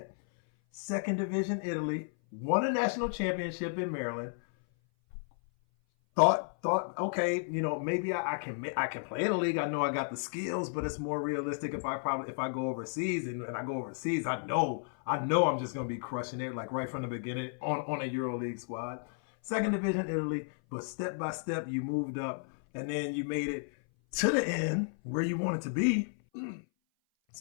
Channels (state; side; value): silent; right; 56 dB below the other